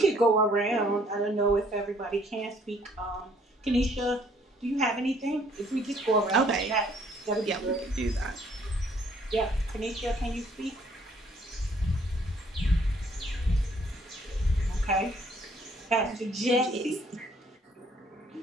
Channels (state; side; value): normal; both; correlation 0.63